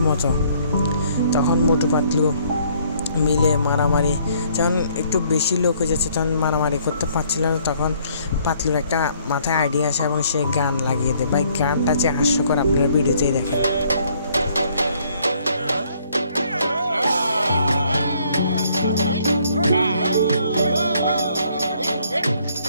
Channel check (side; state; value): both; inverted; correlation -0.64